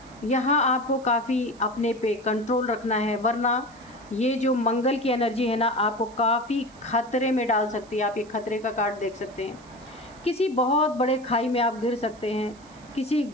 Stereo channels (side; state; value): right; noise; hiss, 26 dB below the sound